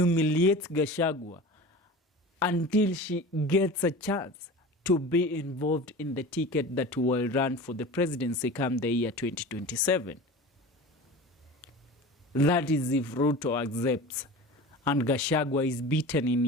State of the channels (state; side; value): normal; both; correlation 0.35